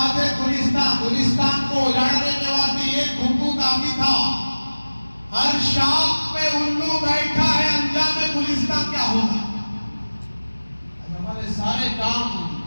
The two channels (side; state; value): both; inverted; correlation -1.00